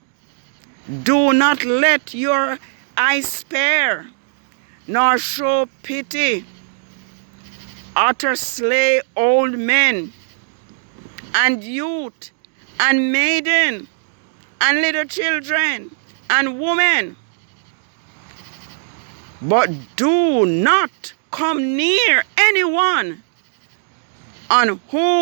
Do not let your eye spare, nor show pity. Utter slay old men, and youth, and maiden, and little children, and women. But do not come near anyone on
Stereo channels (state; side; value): silent; left; digital silence